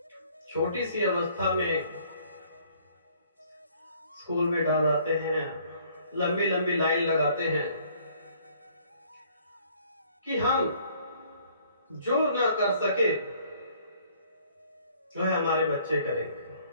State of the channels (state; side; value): inverted; both; correlation -0.60